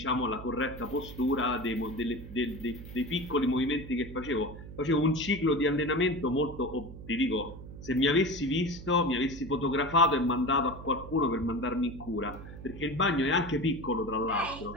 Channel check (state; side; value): noise; right; hum, 13 dB below the sound